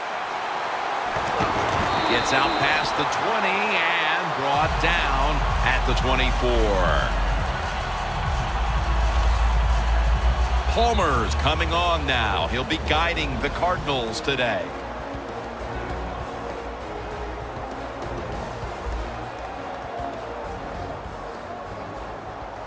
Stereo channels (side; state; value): both; identical; correlation 1.00